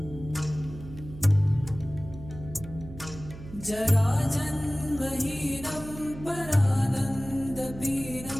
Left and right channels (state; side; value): noise; right; hum, 14 dB below the sound